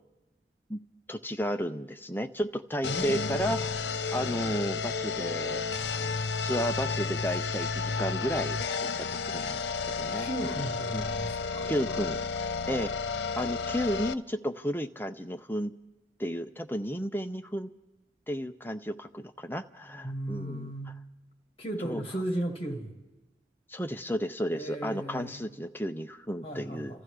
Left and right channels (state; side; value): normal; both; correlation 0.51